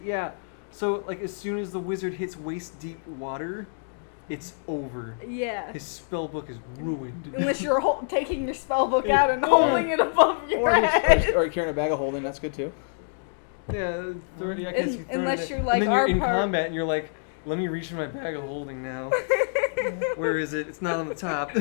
Yeah. So like as soon as the wizard hits waist deep water, it's over. Yeah. His spell book is ruined. Unless you're taking your spell book Yeah. out and holding it above your Or head. you're carrying a bag of holding. That's good too. Yeah, I guess you throw Unless it you're in. like and then you're our in part. combat and you're like, let me reach in my bag of holding now. Where is it? It's not on the top.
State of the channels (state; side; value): silent; right; digital silence